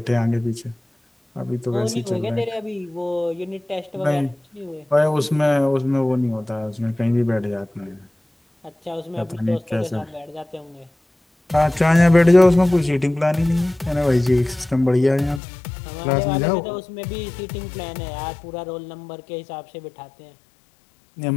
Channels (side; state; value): right; drops out; at 15.4 s